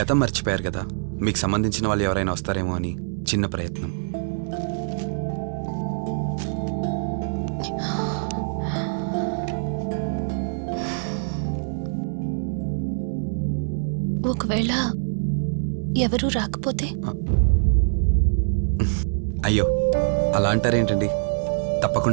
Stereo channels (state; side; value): silent; left; 62 dB below the other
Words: గతం మర్చిపోయారు కదా, మీకు సంబంధించిన వాళ్ళు ఎవరైనా వస్తారేమో అని చిన్న ప్రయత్నం. ఒకవేళ ఎవరూ రాకపోతే? అయ్యో అలా అంటారేంటండి,